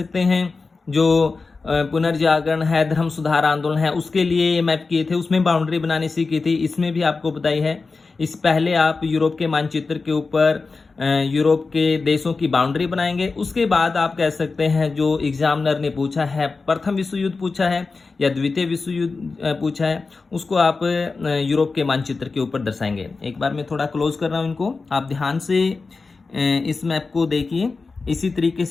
हैं जो पुनर्जागरण है, धर्म सुधार आंदोलन है, उसके लिए ये मैप किए थे, उसमें बाउंड्री बनानी सीखी थी, इसमें भी आपको बताई है। इस पहले आप यूरोप के मानचित्र के ऊपर यूरोप के देशों की बाउंड्री बनाएंगे, उसके बाद आप कह सकते हैं जो एग्जामिनर ने पूछा है, प्रथम विश्व युद्ध पूछा है या द्वितीय विश्व युद्ध पूछा है, उसको आप यूरोप के मानचित्र के ऊपर दर्शाएंगे। एक बार मैं थोड़ा क्लोज कर रहा हूँ इनको, आप ध्यान से इस मैप को देखिए। इसी तरीके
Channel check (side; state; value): right; quieter; 4.1 dB